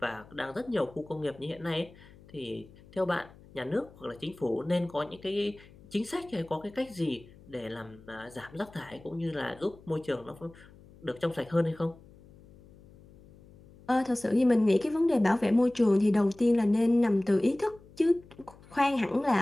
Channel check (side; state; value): left; noise; hum, 23 dB below the sound